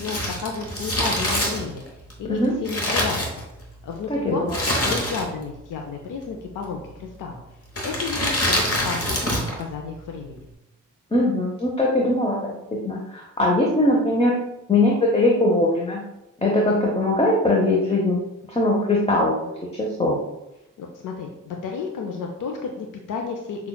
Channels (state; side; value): normal; both; correlation 0.30